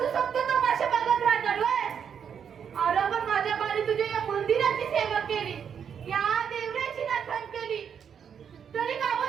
फक्त तमाशा बघत राहणार व्हय? अरे पण माझ्या बारी तुझ्या या मंदिराची सेवा केली, या देवराची नाथण केली, तरी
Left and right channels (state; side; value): quieter; left; 7.7 dB